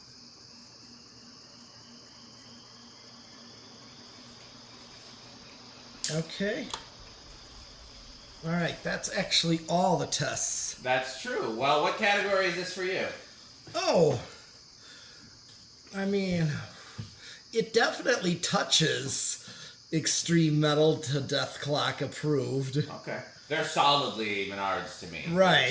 Okay. All right. That's actually all the tests. That's true. Well, what category is this for you? Oh. I mean, it definitely touches extreme metal to Death Clock approved. Okay. They're solidly Menards to me. Right,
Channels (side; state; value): both; identical; correlation 1.00